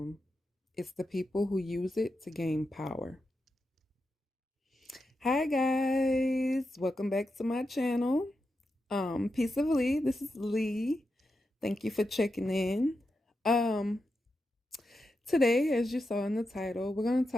It's the people who use it to gain power. Hi guys, welcome back to my channel. Peace of Lee. This is Lee. Thank you for checking in. Um, Today, as you saw in the title, we're going to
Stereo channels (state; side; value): normal; both; correlation 0.88